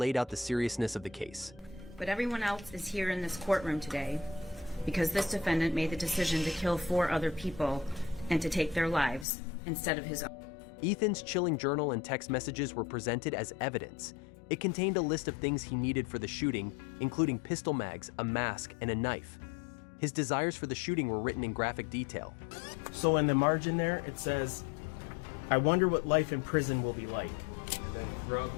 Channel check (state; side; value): drops out; right; at 9.2 s